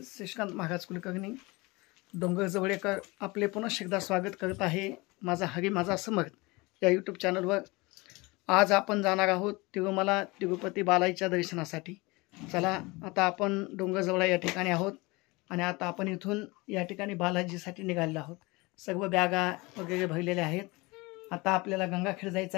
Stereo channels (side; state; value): right; quieter; 24.1 dB